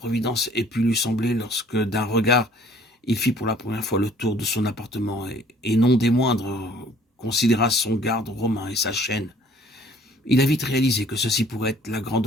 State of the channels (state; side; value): normal; both; correlation 0.56